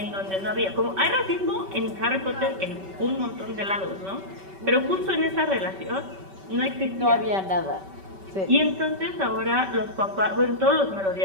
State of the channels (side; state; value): left; late; 5.2 ms